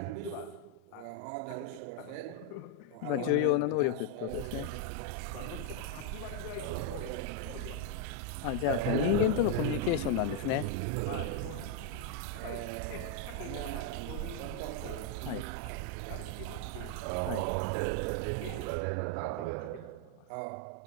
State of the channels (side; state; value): both; different; correlation 0.00